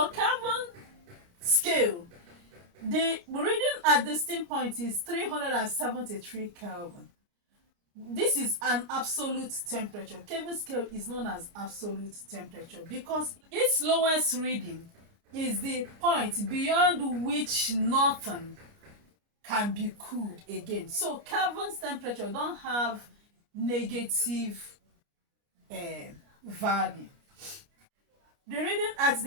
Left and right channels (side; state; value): left; late; 29 ms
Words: Kelvin scale, the reading at the steam point is 373 Kelvin. This is an absolute temperature. Kelvin scale is known as absolute temperature because its lowest reading is the point beyond which nothing can be cooled again. So Kelvin's temperature don't have negative value. The reading at